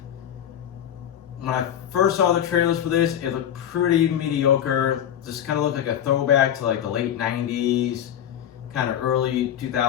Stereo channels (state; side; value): quieter; right; 10.1 dB